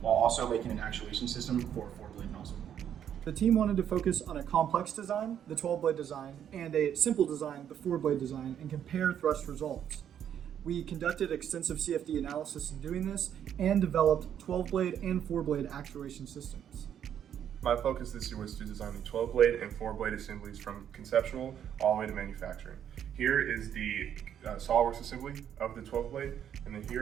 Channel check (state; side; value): quieter; left; 9.4 dB